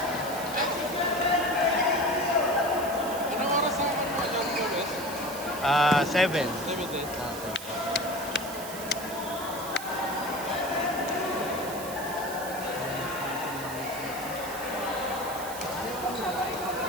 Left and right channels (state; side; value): noise; right; hiss, 11 dB below the sound